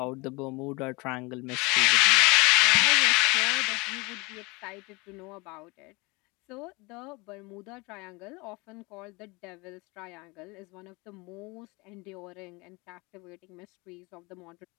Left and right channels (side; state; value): right; quieter; 25.8 dB